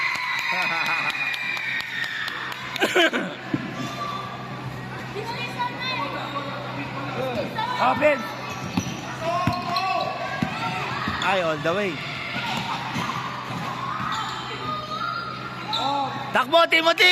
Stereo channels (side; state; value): both; identical; correlation 1.00